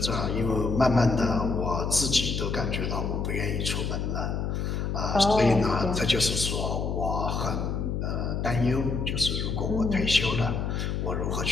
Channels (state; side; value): noise; left; hum, 1 dB below the sound